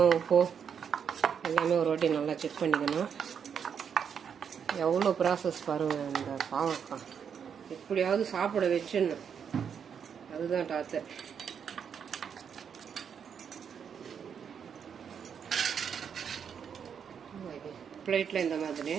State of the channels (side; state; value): left; quieter; 7.4 dB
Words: உப்பு எல்லாமே ஒரு வாட்டி நல்லா செக் பண்ணிக்கணும். எவ்வளோ ப்ராசஸ் பாருங்கள். இந்த பாவக்காய் எப்படியாவது சாப்பிட வச்சுன்னு அதுதான் டாத்தர். பிளேட்டில் இந்த மாதிரி